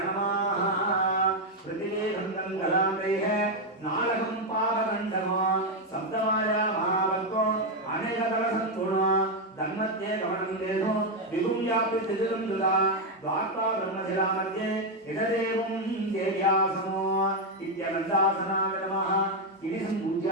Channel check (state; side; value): normal; both; correlation 0.04